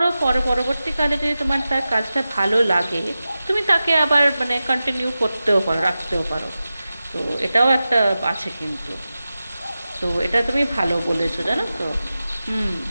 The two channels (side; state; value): both; inverted; correlation -0.94